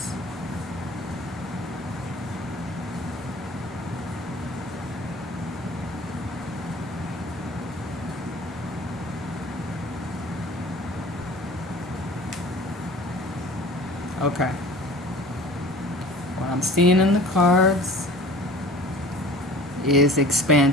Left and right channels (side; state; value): both; normal; correlation 0.44